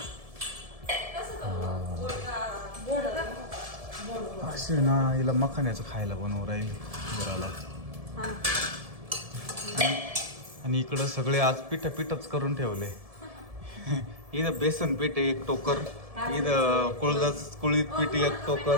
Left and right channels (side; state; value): left; late; 1.7 ms